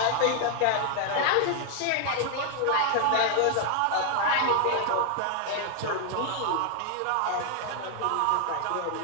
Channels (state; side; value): different; both; correlation 0.00